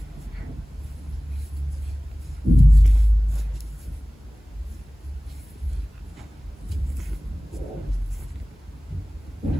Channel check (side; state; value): both; normal; correlation 0.98